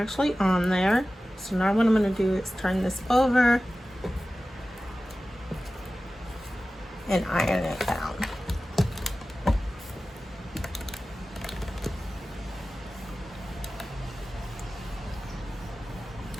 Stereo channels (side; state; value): both; normal; correlation 0.95